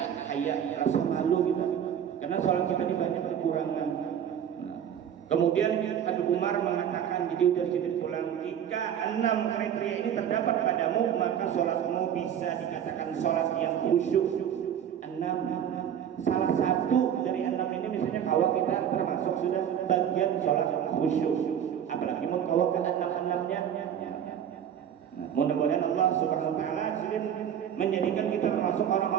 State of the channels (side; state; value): left; quieter; 9.3 dB